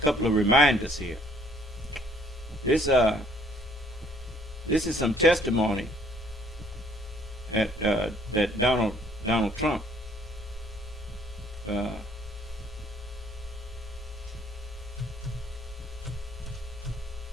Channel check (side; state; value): both; normal; correlation 0.61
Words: couple of reminders here. This is some testimony that Donald Trump